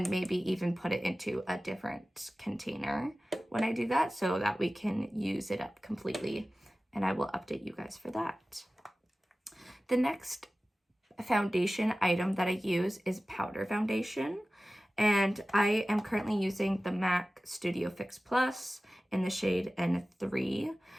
maybe even put it into a different container when I do that so that we can use it up completely. And I will update you guys for that. The next foundation item that I use is powder foundation. And I am currently using the MAC Studio Fix Plus in the shade N3.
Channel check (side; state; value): both; normal; correlation 0.96